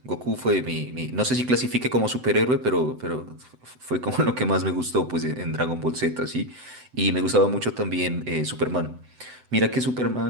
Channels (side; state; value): left; late; 7.9 ms